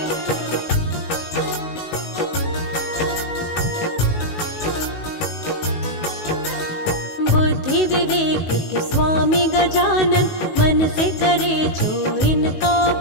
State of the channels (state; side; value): late; right; 19 ms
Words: बुद्धि विवेक के स्वामी गजानन, मन से करे जो इनका